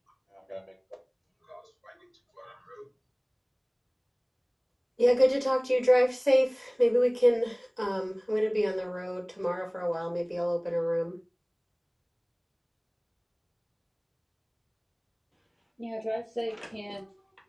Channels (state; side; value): identical; both; correlation 1.00